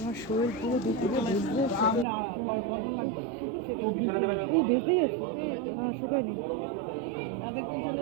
শরীর পুরো দুপুরে ভিজতেই আছে, শুকায়নি।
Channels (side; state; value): left; drops out; at 2.1 s